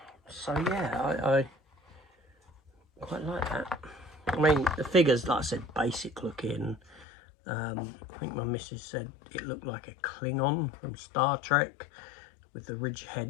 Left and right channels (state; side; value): drops out; right; at 7.1 s